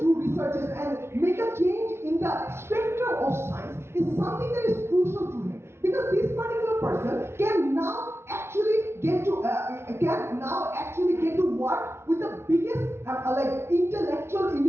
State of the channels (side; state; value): left; late; 0.12 ms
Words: researches and make a change in the spectrum of science is something that is crucial to him. Because this particular person can now actually get to work with the biggest intellectual